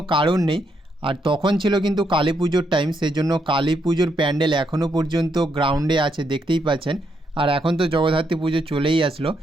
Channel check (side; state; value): both; normal; correlation 0.78